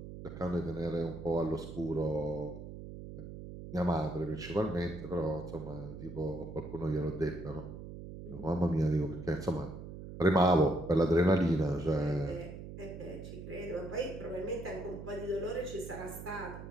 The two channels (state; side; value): noise; right; hum, 11 dB below the sound